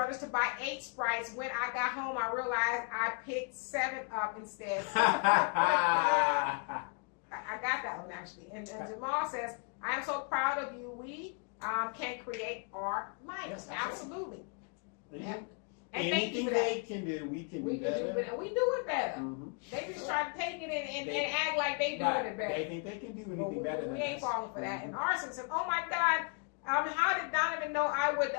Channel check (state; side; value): quieter; right; 38.4 dB